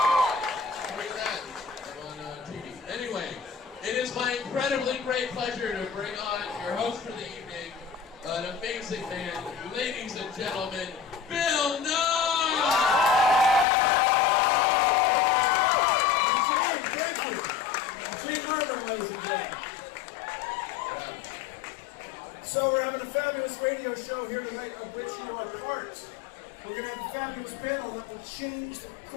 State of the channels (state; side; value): drops out; right; at 13.7 s